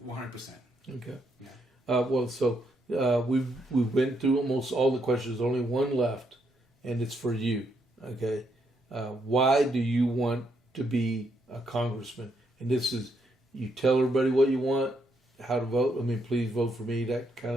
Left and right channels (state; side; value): normal; both; correlation 0.76